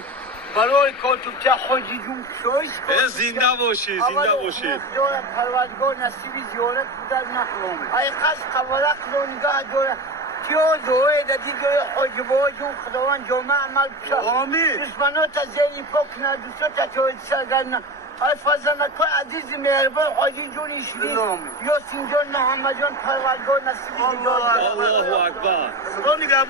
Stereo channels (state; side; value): normal; both; correlation 0.25